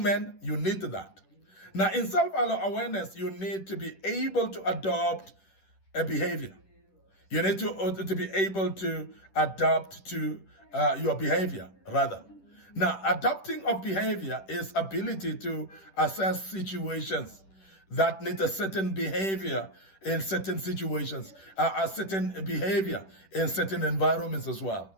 man, you need that. Now, in self-awareness, you need to be able to adopt a behavior. You need to be able to adapt to your behavior, rather. Now, adapting of behavior is ability to assess situations that need a certain behavior in certain situations, a certain behavior in certain environments as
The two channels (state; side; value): late; right; 10 ms